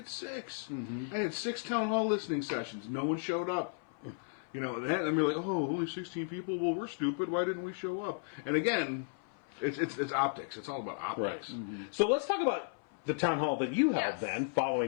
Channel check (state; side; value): silent; right; 55 dB below the other